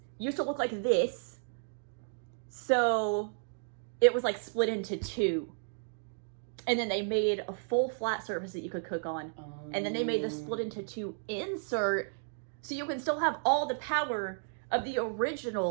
to look like this. So it was like split into 2. And then they made a full flat surface that you could cook on. And then they made the split into 2 insert so you can still have all the power of the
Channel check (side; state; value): left; silent; digital silence